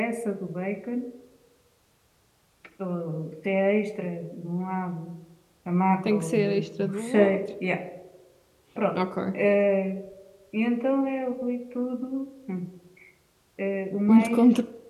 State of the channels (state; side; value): identical; both; correlation 1.00